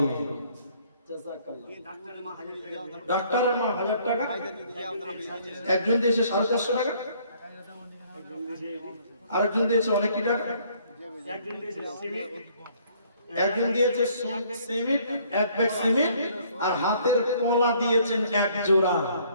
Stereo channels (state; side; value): inverted; both; correlation -0.62